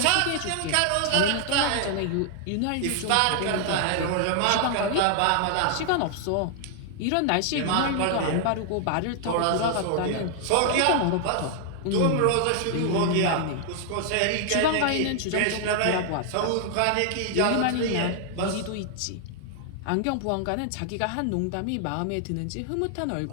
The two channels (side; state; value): both; different; correlation 0.00